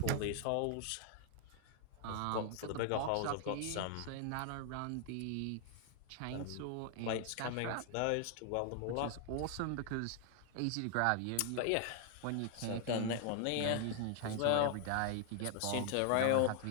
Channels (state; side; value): different; both; correlation 0.00